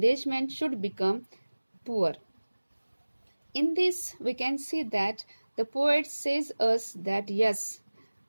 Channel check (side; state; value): both; inverted; correlation -1.00